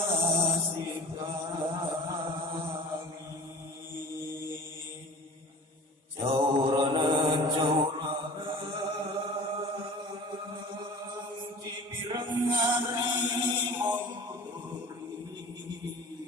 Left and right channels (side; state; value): both; normal; correlation 0.41